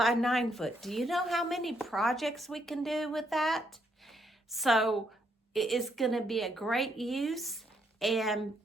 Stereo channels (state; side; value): normal; both; correlation 0.74